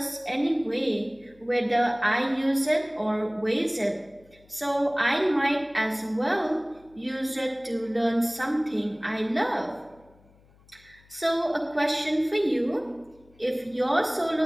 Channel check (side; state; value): left; noise; hum, 29 dB below the sound